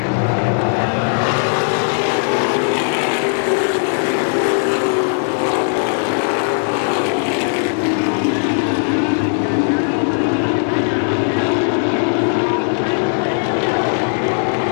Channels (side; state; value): right; silent; digital silence